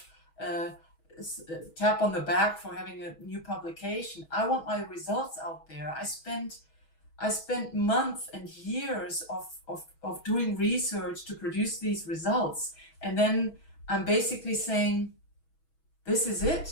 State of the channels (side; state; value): right; late; 6.2 ms